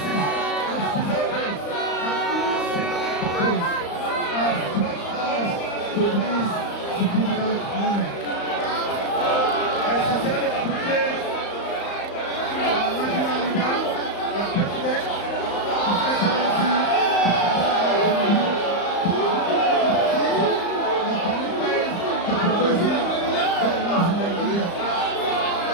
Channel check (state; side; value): late; right; 35 ms